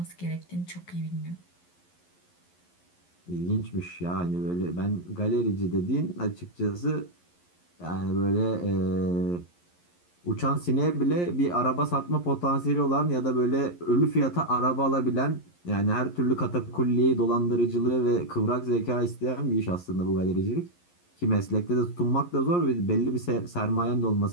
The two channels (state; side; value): late; right; 11 ms